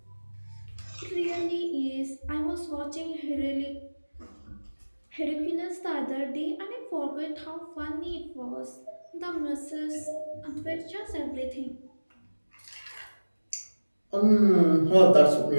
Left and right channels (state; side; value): inverted; both; correlation -1.00